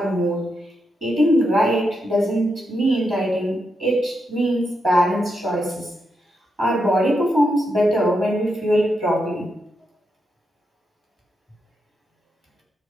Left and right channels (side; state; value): both; normal; correlation 0.84